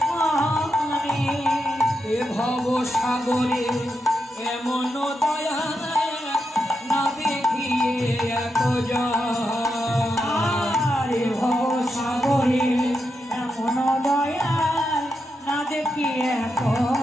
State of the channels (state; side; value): normal; both; correlation 0.85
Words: এ ভব সাগরে এমন দয়া না দেখিয়ে এত রে ভব সাগরে এমন দয়া না দেখিয়ে